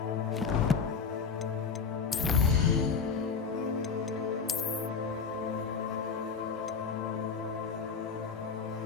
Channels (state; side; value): quieter; right; 5.5 dB